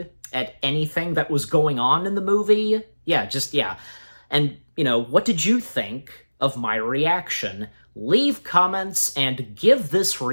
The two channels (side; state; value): both; inverted; correlation -1.00